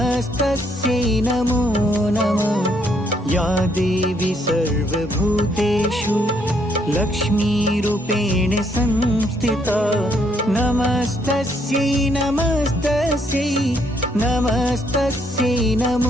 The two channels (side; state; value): both; normal; correlation 0.71